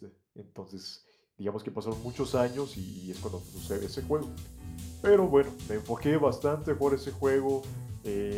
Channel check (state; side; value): identical; both; correlation 1.00